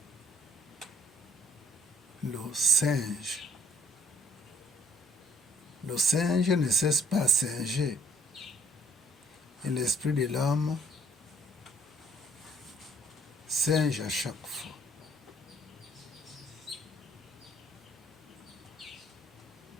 le singe. Le singe ne cesse pas à singer. Et l'esprit de l'homme singe à chaque fois.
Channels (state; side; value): normal; both; correlation 0.62